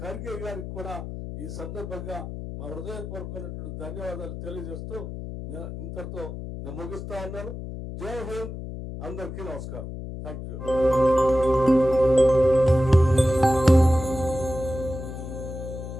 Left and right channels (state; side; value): noise; left; hum, 9 dB below the sound